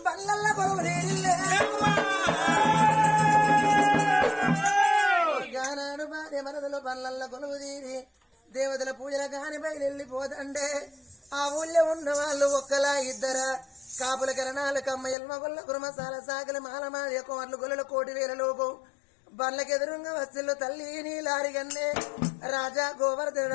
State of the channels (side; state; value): right; drops out; at 15.2 s